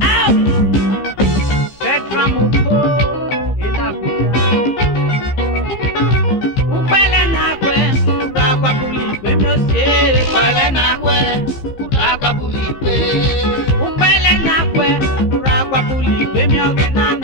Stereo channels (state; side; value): late; right; 15 ms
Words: Petra Mupo Inabuja Upele nakwe Ragwa buli gbe mi ose Upele nakwe Ragwa buli gbe Upele nakwe Ragwa buli gbe mi ogena